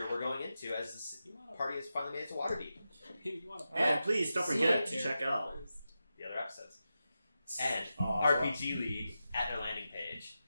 we're going into as this party has finally made it to Waterdeep. You want to And please don't forget to check out The other episodes. And Awesome. RPG League at their landing page.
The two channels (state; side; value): inverted; both; correlation -0.91